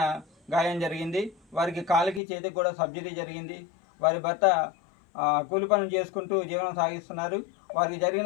గాయం జరిగింది. వారికి కాలుకి చేతికి కూడా సర్జరీ జరిగింది. వారి భర్త కూలి పనులు చేసుకుంటూ జీవనం సాగిస్తున్నారు. వారికి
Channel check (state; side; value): drops out; right; at 2.2 s